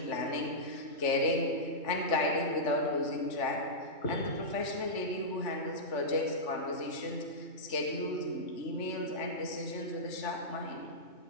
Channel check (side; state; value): right; late; 3.4 ms